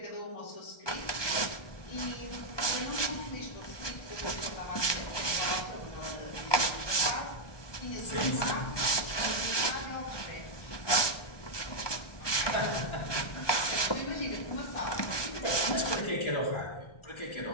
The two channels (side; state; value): right; late; 1.2 ms